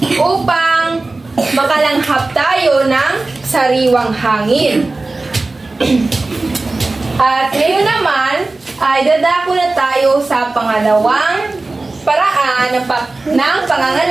upang makalanghap tayo ng sariwang hangin. At ngayon naman ay dadako na tayo sa pangalawang paraan ng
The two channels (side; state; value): left; quieter; 3.3 dB